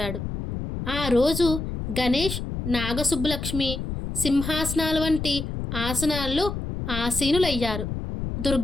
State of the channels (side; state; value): left; noise; rumble, 5 dB below the sound